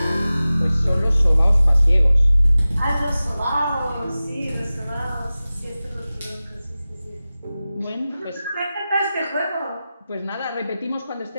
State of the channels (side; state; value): both; inverted; correlation -0.96